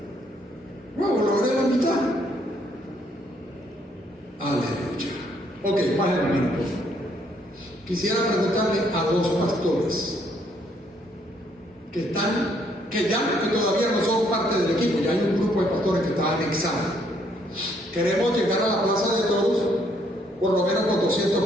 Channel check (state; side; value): normal; both; correlation 0.69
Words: Bueno, logré la mitad. Aleluya. Ok, bajen la mano, por favor. Quisiera preguntarle a dos pastores que todavía no son parte del equipo. Ya hay un grupo de pastores que está anexado. Queremos llegar a la Plaza de Toros por lo menos con 200